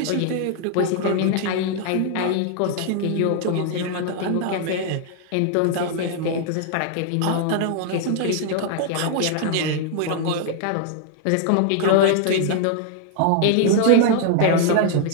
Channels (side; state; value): both; different; correlation 0.00